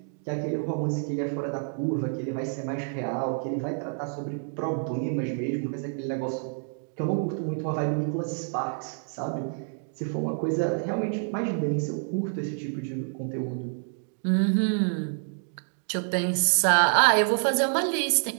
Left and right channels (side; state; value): left; silent; 59 dB below the other